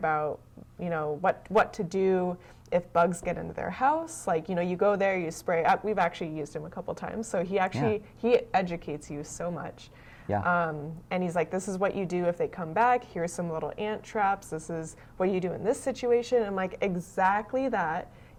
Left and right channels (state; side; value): identical; both; correlation 1.00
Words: you know, what to do if bugs get into their house? Like, you know, you go there, you spray. We've actually used him a couple times, so he educates you so much. Yeah. And he's like, this is what you do if they come back. Here's some little ant traps. This is what you do in this situation. I'm like, exactly that.